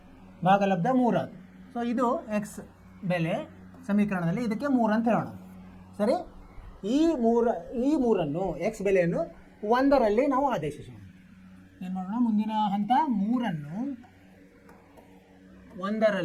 ಭಾಗಲಬ್ಧ 3 ಆಗುತ್ತೆ. ಸೊ ಇದು x ಬೆಲೆ ಸಮೀಕರಣದಲ್ಲಿ ಇದಕ್ಕೆ 3 ಅಂತ ಹೇಳೋಣ. ಸರಿ. ಈ ಮೂರನ್ನು x ಬೆಲೆಯನ್ನು 1ರಲ್ಲಿ ನಾವು ಆದೇಶಿಸೋಣ. ಏನು ಮಾಡೋಣ? ಮುಂದಿನ ಹಂತ 3ಅನ್ನು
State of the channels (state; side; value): identical; both; correlation 1.00